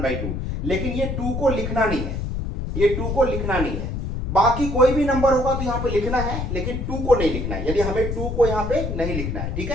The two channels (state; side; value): noise; left; rumble, 3 dB below the sound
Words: लेकिन ये 2 को लिखना नहीं है, ये 2 को लिखना नहीं है। बाकी कोई भी नंबर होगा तो यहां पे लिखना है, लेकिन 2 को नहीं लिखना है, यदि हमें 2 को यहां पे नहीं लिखना है। ठीक